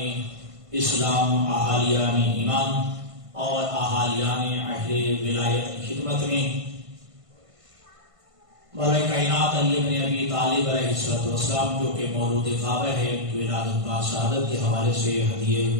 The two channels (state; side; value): late; left; 1.5 ms